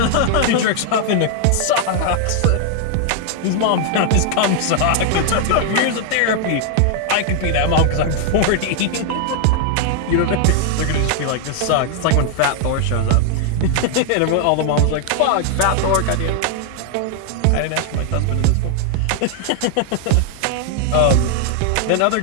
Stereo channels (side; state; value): both; different; correlation 0.00